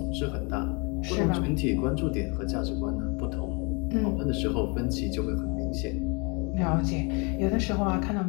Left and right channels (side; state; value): right; quieter; 31.4 dB